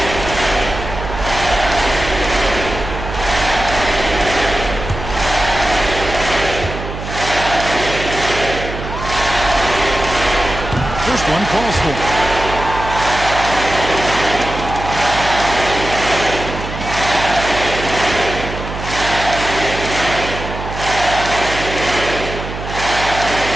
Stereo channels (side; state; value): right; noise; hum, 8 dB below the sound